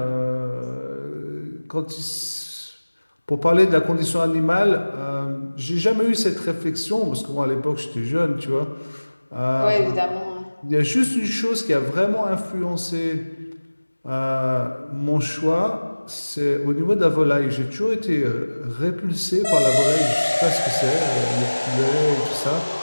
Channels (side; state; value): both; inverted; correlation -1.00